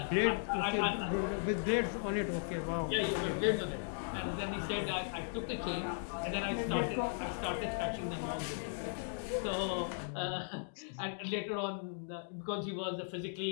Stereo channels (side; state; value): right; silent; digital silence